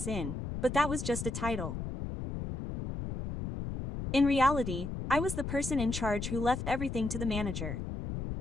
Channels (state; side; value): noise; left; rumble, 5 dB below the sound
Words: inn, but that was just a title. In reality, I was the person in charge who left everything to the manager.